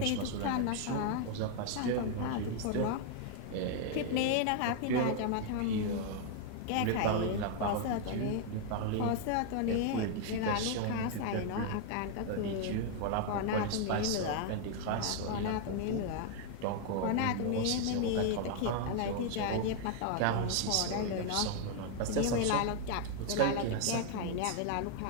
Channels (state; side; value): different; both; correlation 0.00